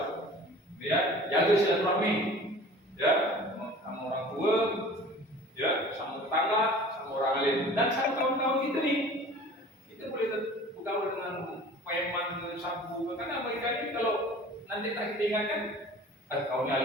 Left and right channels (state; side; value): normal; both; correlation 0.44